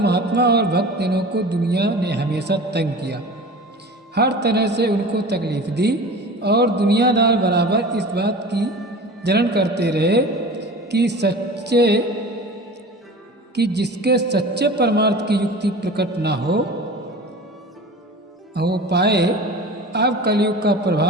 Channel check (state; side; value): normal; both; correlation 0.37